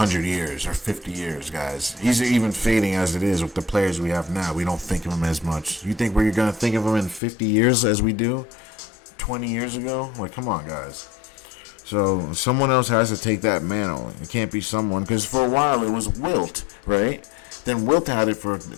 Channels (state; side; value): drops out; right; at 7.2 s